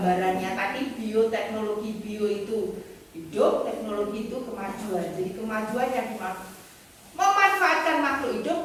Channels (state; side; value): identical; both; correlation 1.00